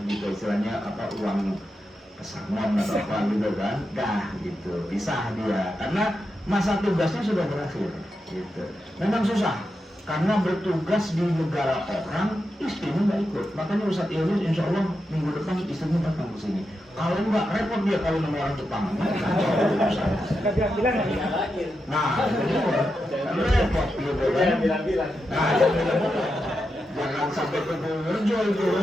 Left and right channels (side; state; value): both; normal; correlation 0.87